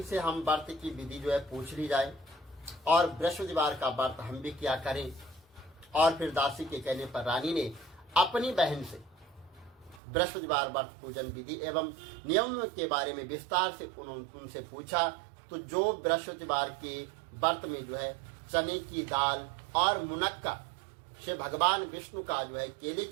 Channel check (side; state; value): left; drops out; at 10.0 s